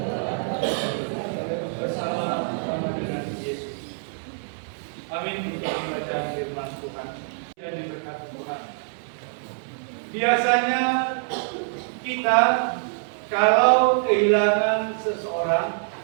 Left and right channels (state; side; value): silent; left; 62 dB below the other